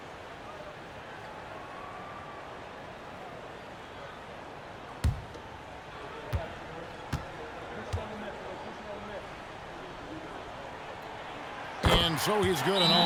And so he's good on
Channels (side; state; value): both; identical; correlation 1.00